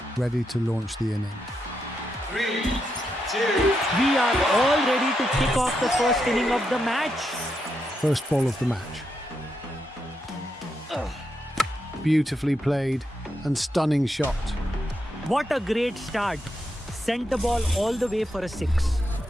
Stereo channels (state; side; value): normal; both; correlation 0.83